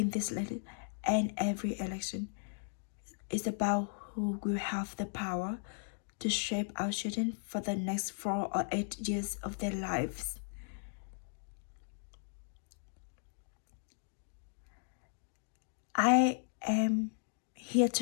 this and every election, it's about who will have the power to shape our children for the next 4 or 8 years of their lives. I am here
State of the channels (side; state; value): right; silent; digital silence